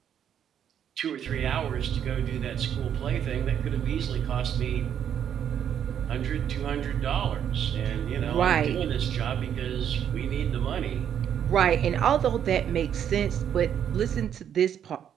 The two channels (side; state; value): left; quieter; 9.1 dB